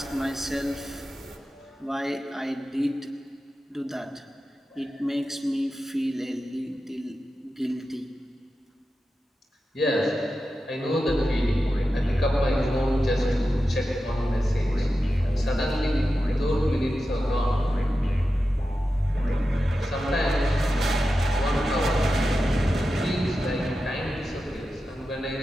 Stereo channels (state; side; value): normal; both; correlation 0.92